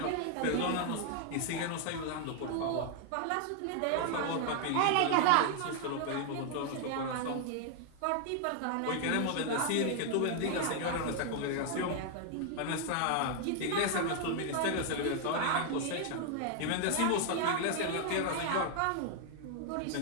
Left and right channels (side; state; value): both; different; correlation 0.00